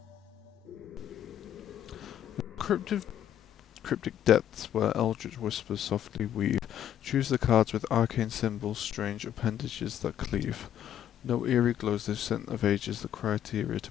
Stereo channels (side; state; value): right; quieter; 10.6 dB